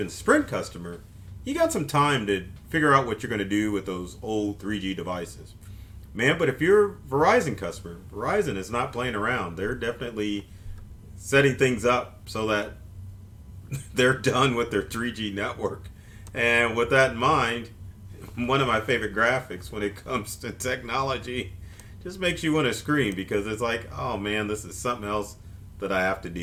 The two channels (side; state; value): both; identical; correlation 1.00